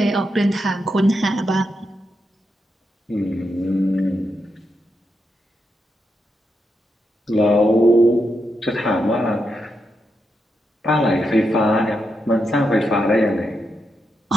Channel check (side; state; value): both; normal; correlation 0.84